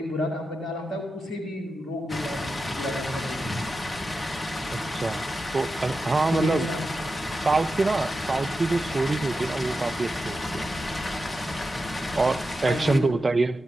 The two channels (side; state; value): both; normal; correlation 0.91